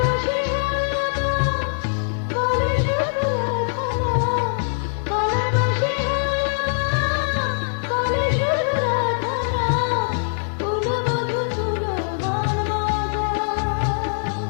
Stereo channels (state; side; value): silent; right; digital silence